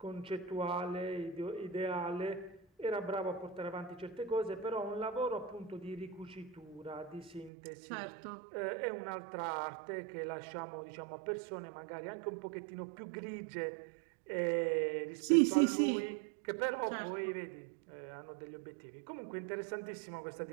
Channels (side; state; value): left; drops out; at 7.5 s